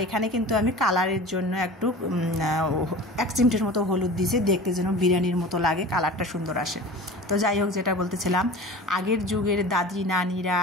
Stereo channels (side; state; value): both; normal; correlation 0.37